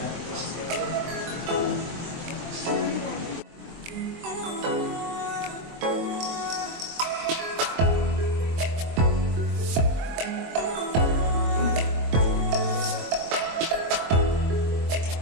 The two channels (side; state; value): left; late; 23 ms